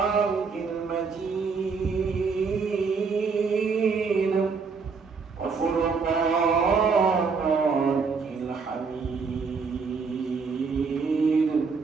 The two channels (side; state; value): left; quieter; 5.1 dB